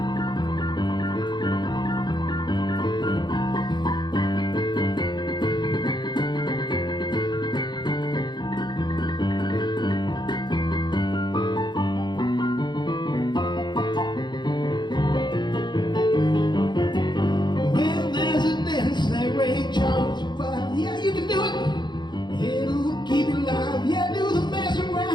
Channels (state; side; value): late; right; 0.21 ms